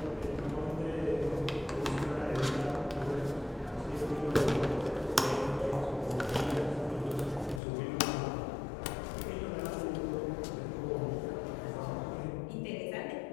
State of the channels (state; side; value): drops out; right; at 7.6 s